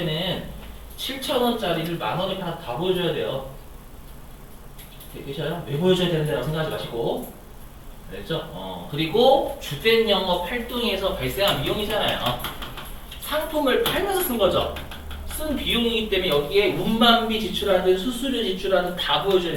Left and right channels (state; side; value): identical; both; correlation 1.00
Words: 7,000원짜리를 10,000원에 다 보여줘야 돼요. 되셔요? 왜 보여줘야 되는데라고 생각하지 마시고. 알겠죠? 그리고 주된 영업 활동에서 발생한 비용이잖아요. 상품을 팔면서 쓴 거죠. 쓴 비용이기 때문에 여기에 운반비 지출하든 수수료 지출하든 다 보여줘야